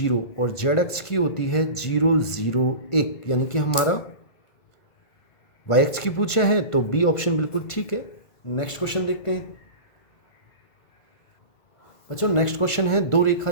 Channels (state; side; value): late; right; 1.5 ms